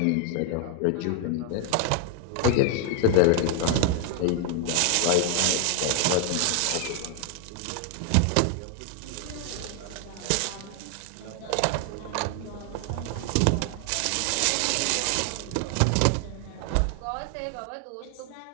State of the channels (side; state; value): both; different; correlation 0.00